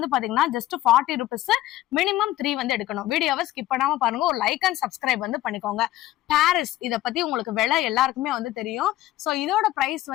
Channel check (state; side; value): quieter; right; 15.2 dB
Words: பாத்தீங்கன்னா ஜஸ்ட் 40 rupees. மினிமம் 3 வந்து எடுக்கணும். வீடியோவை ஸ்கிப் பண்ணாம பாருங்க. ஒரு லைக் அண்ட் சப்ஸ்கிரைப் வந்து பண்ணிக்கோங்க. பாரிஸ், இத பத்தி உங்களுக்கு விலை எல்லாருக்குமே வந்து தெரியும். சோ இதோட பிரைஸ்